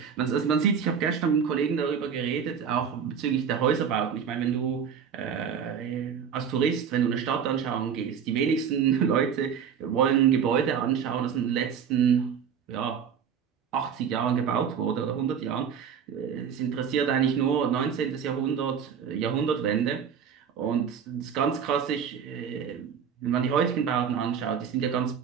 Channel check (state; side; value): quieter; left; 7.4 dB